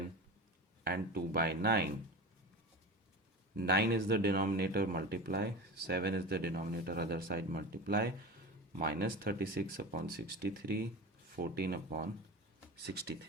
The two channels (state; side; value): normal; both; correlation 0.29